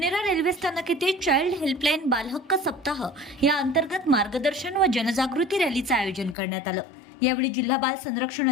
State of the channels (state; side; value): drops out; right; at 6.4 s